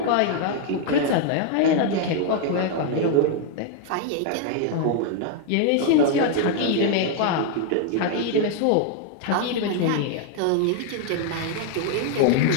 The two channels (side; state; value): both; different; correlation 0.00